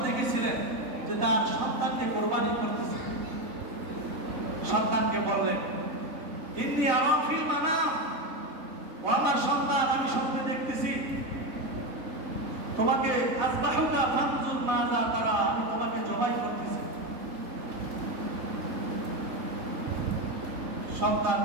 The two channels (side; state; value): left; late; 4.0 ms